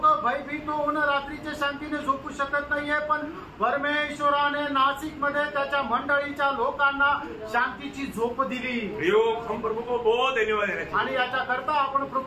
भयभीत होऊन रात्रीच्या शांतीने झोपू शकत नाहीये, पण परमेश्वराने नाशिकमध्ये त्याच्या मंडळीच्या लोकांना शांतीची झोप दिली। हम प्रभु को बहुत धन्यवाद देना चाहिए आणि याच्याकरता आपण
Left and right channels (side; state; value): both; identical; correlation 1.00